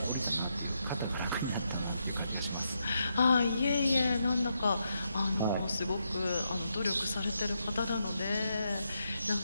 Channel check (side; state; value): both; inverted; correlation -0.81